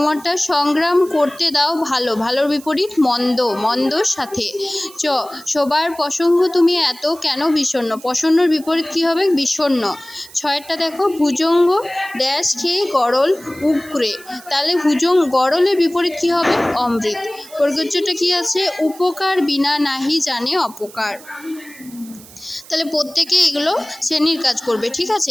সংগ্রাম করতে দাও ভালো, ভালোর বিপরীত মন্দ, মন্দর সাথে। চ, সবার প্রসঙ্গ তুমি এত কেন বিষণ্ণ, প্রসন্নর বিপরীত কী হবে? বিষণ্ণ। ছয়েরটা দেখো ভুজঙ্গ ড্যাশ খেয়ে গরল উগরে, তাহলে গরলের বিপরীত কী হবে? অমৃত। প্রযোজ্যটা কী আছে? উপকার বিনা নাহি জানে অপকার। তাহলে প্রত্যেকে এগুলো শ্রেণীর কাজ করবে। ঠিক আছে,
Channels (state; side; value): noise; right; hiss, 20 dB below the sound